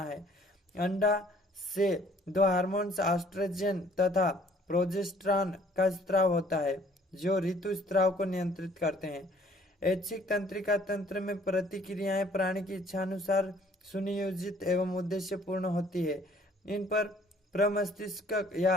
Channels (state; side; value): normal; both; correlation 0.58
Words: है। अंडा से 2 हार्मोन्स एस्ट्रोजन तथा प्रोजेस्टेरॉन का स्राव होता है जो ऋतुस्राव को नियंत्रित करते हैं। ऐच्छिक तंत्रिका तंत्र में प्रतिक्रियाएं प्राणी की इच्छानुसार सुनियोजित एवं उद्देश्यपूर्ण होती है। इन पर प्रमस्तिष्क